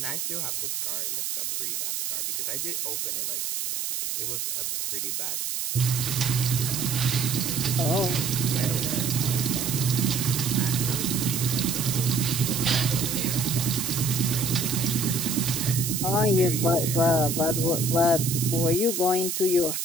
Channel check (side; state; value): right; noise; hiss, 2 dB below the sound